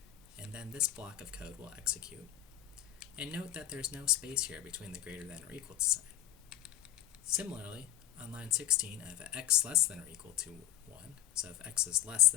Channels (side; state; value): right; quieter; 12.3 dB